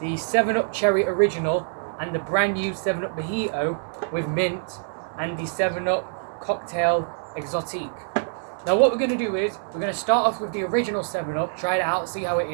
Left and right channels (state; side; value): silent; left; 62 dB below the other